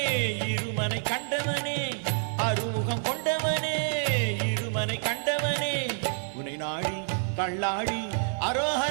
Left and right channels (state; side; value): silent; left; 59 dB below the other